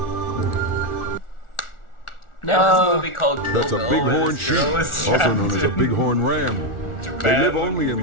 There's this movie called Kill That's a Bill where bighorn this sheep, girl is also trapped known as a in bighorn ram. They Japan live only in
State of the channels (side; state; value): right; late; 1.4 ms